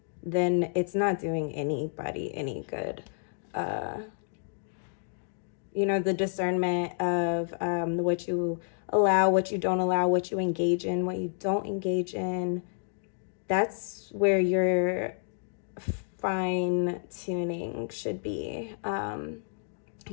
then it's not doing anybody any good. You know, the discernment of what you allow, what you don't allow, what you engage in, what you don't engage in, that's where your fine tuning should be. You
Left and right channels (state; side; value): silent; right; digital silence